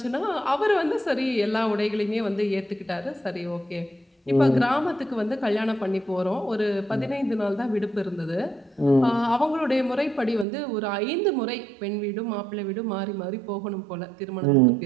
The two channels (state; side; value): drops out; left; at 10.5 s